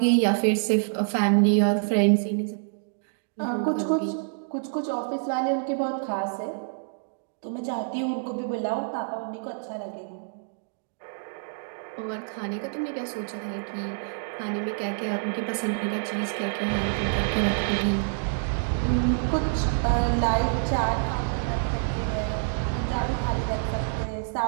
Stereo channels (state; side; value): silent; left; digital silence